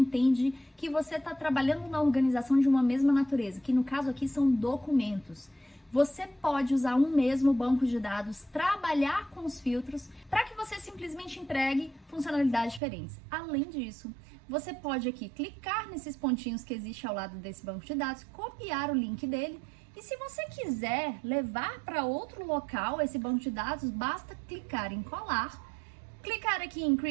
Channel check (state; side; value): drops out; left; at 12.8 s